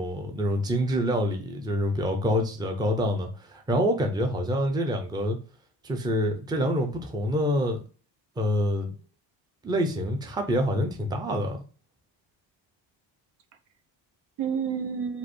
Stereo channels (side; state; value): both; normal; correlation 0.54